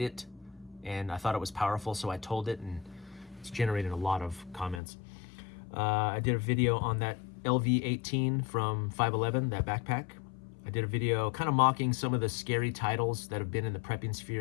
it, and I thought it was powerful, so I told it, and it's generated a lot of comments. I did a video on that LV18 from 511, that backpack. I did a video kind of mocking some of the scary titles that have been in the prepping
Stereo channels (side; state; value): right; drops out; at 4.8 s